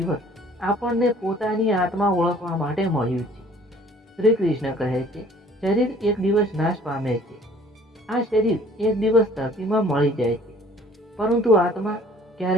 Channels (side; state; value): both; normal; correlation 0.54